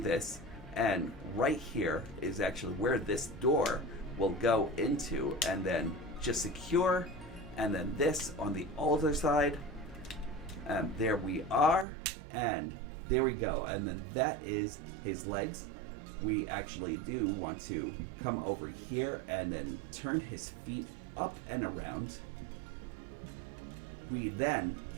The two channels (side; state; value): left; drops out; at 11.9 s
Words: and right here is actually where this door will go into, and then just secure, and then this on the other side, and there we are, and there we go, and then that is his legs. We actually do want to come over here and then turn his feet up and around. We then